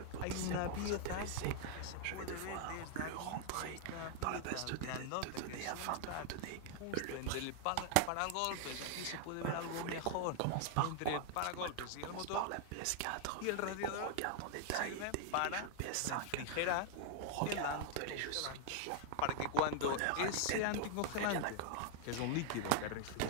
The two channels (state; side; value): different; both; correlation 0.00